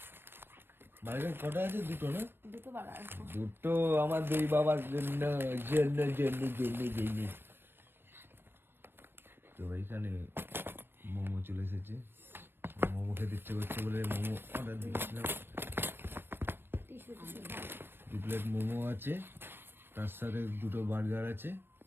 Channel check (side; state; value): left; late; 0.10 ms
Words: বার্গার কটা আছে? দুটো না? দুটো আমার দুই বাবার জন্য। তো এইখানে মোমো চলে এসেছে। মোমো খেতে ইচ্ছে করছে বলে মোমো অর্ডার দিয়েছিলাম। 2 প্লেট মোমো আছে, তার সাথে দুটো বার্গার আছে,